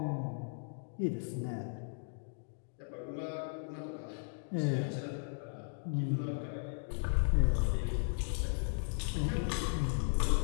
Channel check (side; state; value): right; silent; digital silence